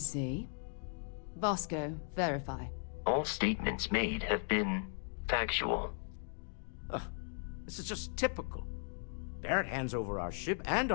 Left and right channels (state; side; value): silent; right; digital silence